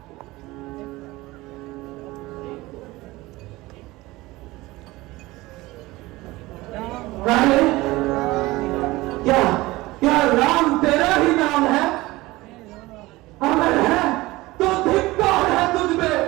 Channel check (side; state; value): left; quieter; 19.8 dB